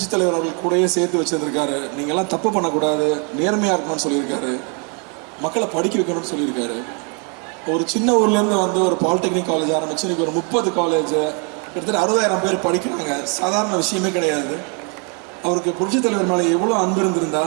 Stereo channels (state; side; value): quieter; left; 36.2 dB